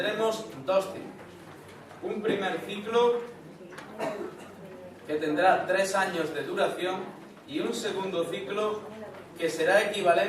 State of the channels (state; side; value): identical; both; correlation 1.00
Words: dos ciclos. Un primer ciclo que tendrá 3 años de duración y un segundo ciclo que será